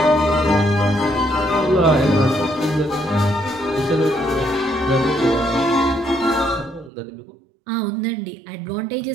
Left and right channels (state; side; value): drops out; left; at 6.9 s